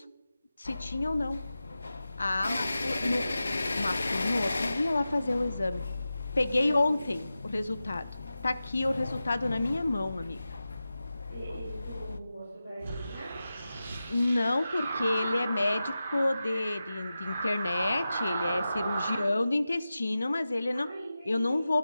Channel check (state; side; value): inverted; both; correlation -0.93